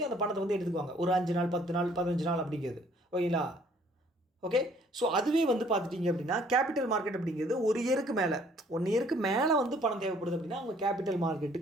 அந்த பணத்தை வந்து எடுத்துக்குவாங்க. ஒரு 5 நாள், 10 நாள், 15 நாள் அப்படிங்கிறது. ஓகேங்களா, ஓகே. ஸோ அதுவே வந்து பார்த்துட்டிங்க அப்படின்னா கேபிட்டல் மார்க்கெட் அப்படிங்கிறது 1 இயருக்கு மேலே, 1 இயருக்கு மேலே வந்து பணம் தேவைப்படுது அப்படின்னா அவங்க கேபிட்டல்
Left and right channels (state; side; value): normal; both; correlation 0.60